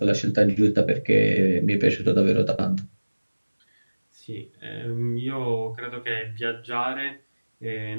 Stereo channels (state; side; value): inverted; both; correlation -1.00